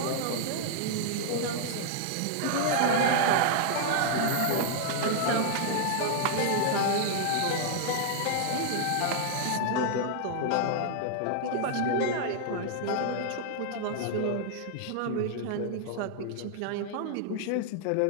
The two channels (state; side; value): different; both; correlation -0.01